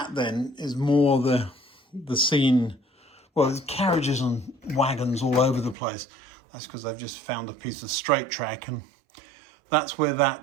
then is more the scene. Well, there's carriages and wagons all over the place. That's because I've just found a piece of straight track, and that's where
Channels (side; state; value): left; drops out; at 5.8 s